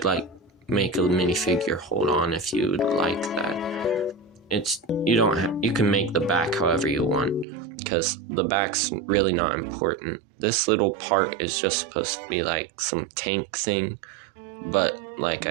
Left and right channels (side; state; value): left; drops out; at 7.5 s